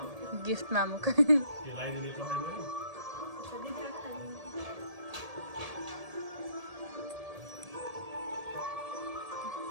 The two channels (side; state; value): left; late; 1.7 ms